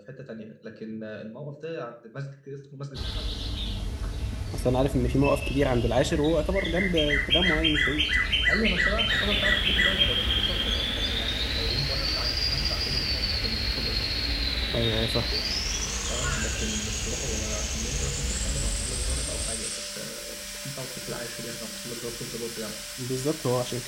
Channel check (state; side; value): identical; both; correlation 1.00